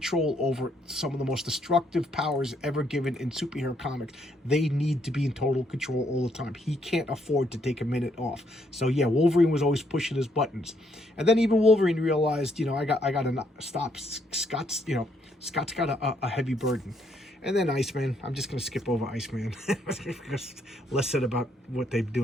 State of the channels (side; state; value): both; normal; correlation 0.72